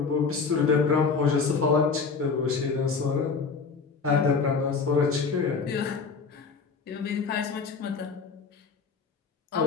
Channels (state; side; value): quieter; right; 5.0 dB